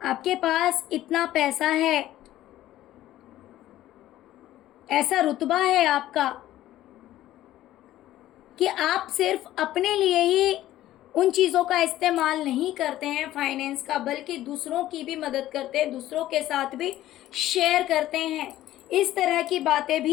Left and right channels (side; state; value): right; quieter; 14.2 dB